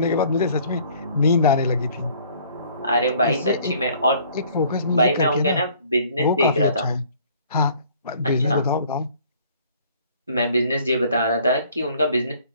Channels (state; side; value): inverted; both; correlation -0.56